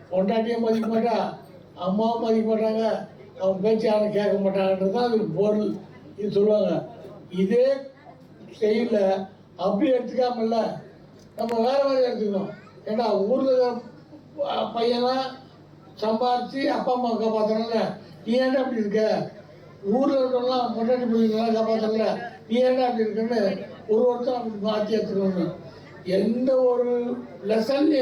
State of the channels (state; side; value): identical; both; correlation 1.00